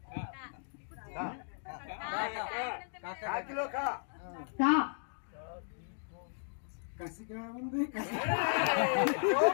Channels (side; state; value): right; silent; digital silence